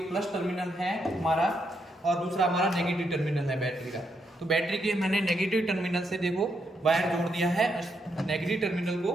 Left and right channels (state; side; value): normal; both; correlation 0.79